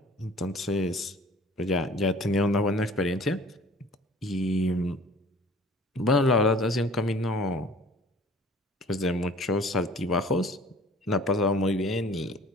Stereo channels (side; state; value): both; normal; correlation 0.49